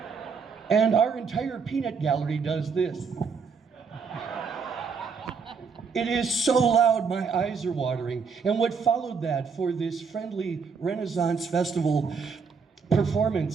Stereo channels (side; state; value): left; quieter; 5.5 dB